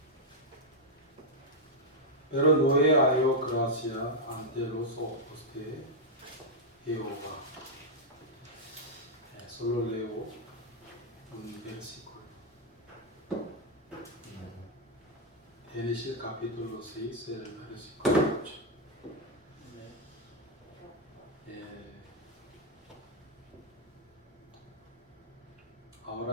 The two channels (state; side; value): normal; both; correlation -0.03